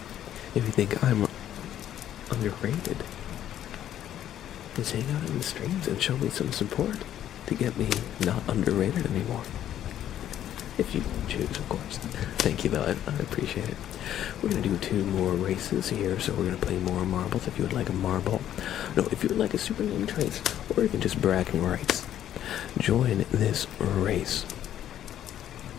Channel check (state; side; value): quieter; right; 11.2 dB